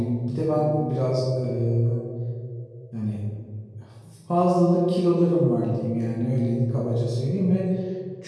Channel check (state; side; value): identical; both; correlation 1.00